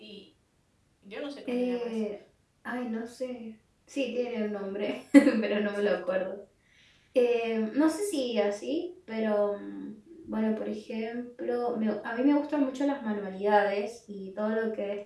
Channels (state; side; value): identical; both; correlation 1.00